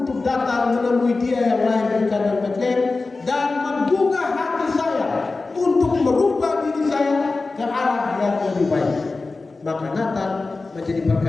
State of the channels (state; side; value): quieter; right; 3.7 dB